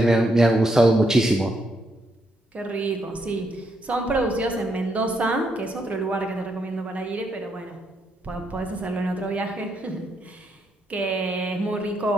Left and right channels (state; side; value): normal; both; correlation 0.78